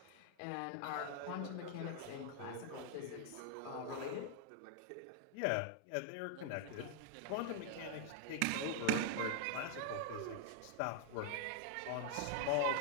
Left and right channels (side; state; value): both; different; correlation 0.00